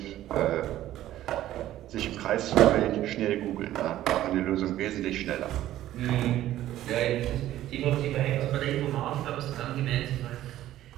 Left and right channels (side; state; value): left; quieter; 13.6 dB